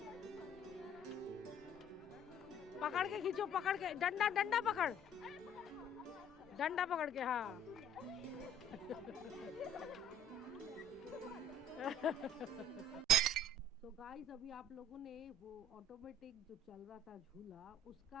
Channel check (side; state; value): both; normal; correlation 0.54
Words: पकड़ के खींचो, पकड़ के, डंडा पकड़, डंडा पकड़ के, हाँ। तो गाइस, अभी आप लोगों ने वो ऑटोमेटिक जो चल रहा था झूला,